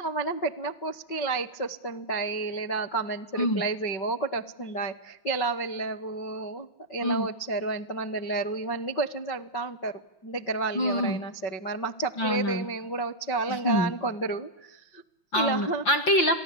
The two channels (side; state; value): right; late; 5.7 ms